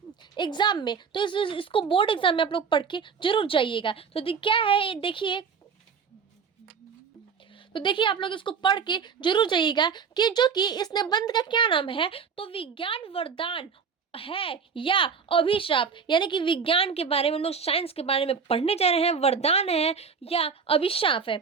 एग्जाम में। तो इसको बोर्ड एग्जाम में आप लोग पढ़ के जरूर जाइएगा। तो क्या है ये देखिए, आप लोग इसको पढ़ के जरूर जाइएगा कि जो कि इस निबंध का क्या नाम है। तो विज्ञान वरदान है या अभिशाप, यानी कि विज्ञान के बारे में हम लोग साइंस के बारे में पढ़ने जा रहे हैं। वरदान है या अभिशाप है।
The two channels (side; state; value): left; quieter; 6.1 dB